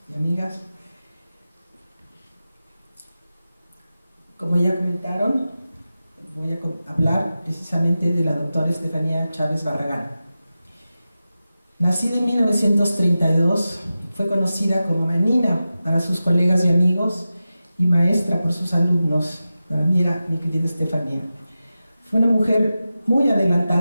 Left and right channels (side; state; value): both; inverted; correlation -0.93